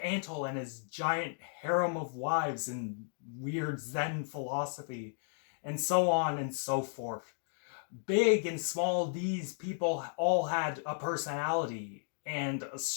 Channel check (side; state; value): right; silent; digital silence